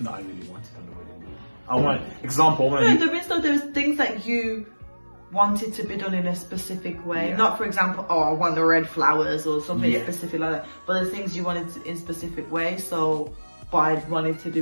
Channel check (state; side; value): inverted; both; correlation -1.00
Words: that I really wanted on the wedding day. I want there's things that you wanted to be done in a specific way. Not, for example, I want the red flowers or something specific like that. But there's things you wanted in specific way. So, but I wanted to